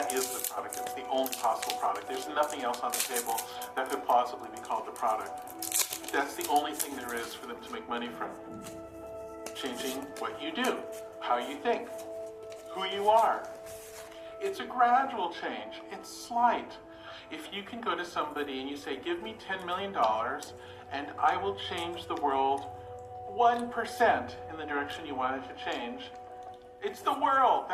is the product. It's the only possible product. There's nothing else on the table that could plausibly be called the product. That's the only thing there is for them to make money from. Changing what you do, how you think, who you are. It's a gradual change. It's slight. If you can go to somebody and you say, give me $10 million and I will change the world 1% in the direction you want it to change, it's the world.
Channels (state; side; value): identical; both; correlation 1.00